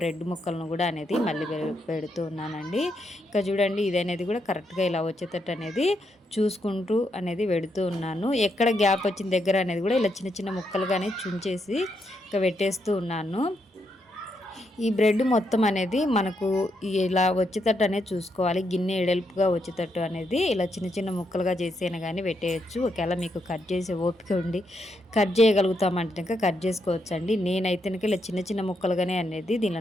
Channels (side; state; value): both; normal; correlation 0.79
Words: ముక్కలను కూడా అనేది మళ్ళీ పెడుతూ ఉన్నానండి. ఇక చూడండి ఇది అనేది కూడా కరెక్ట్గా ఇలా వచ్చేటట్టు అనేది చూసుకుంటూ అనేది పెడుతూ ఉన్నాను. ఎక్కడ గ్యాప్ వచ్చిన దగ్గర అనేది కూడా ఇలా చిన్న చిన్న ముక్కలుగానే చుంచేసి ఇక పెట్టేస్తూ ఉన్నాను. ఈ బ్రెడ్ మొత్తం అనేది మనకు ఇలా వచ్చేటట్టు అనేది చూసుకోవాలి. గిన్నె ఎడల్పుగా వచ్చేటట్టు అనేది ఇలా చిన్న చిన్న ముక్కలుగా చేసేనా కానీ పెట్టేయచ్చు. ఒకవేళ మీకు కట్ చేసే ఓపిక ఉండి కట్ చేయగలుగుతామంటే కట్ చేసుకోవచ్చు అండి. నేనైతే ఇలా చిన్న చిన్న ముక్కలుగానే అనేది